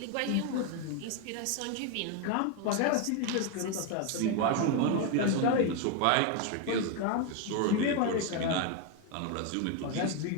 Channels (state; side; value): different; both; correlation 0.01